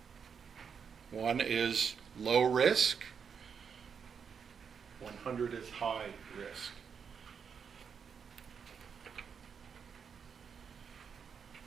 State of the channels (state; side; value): quieter; left; 6.6 dB